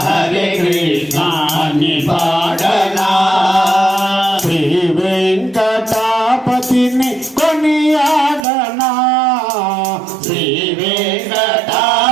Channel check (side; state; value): left; drops out; at 8.5 s